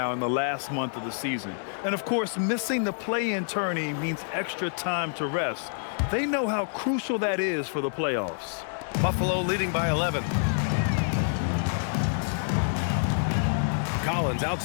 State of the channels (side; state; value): right; silent; 60 dB below the other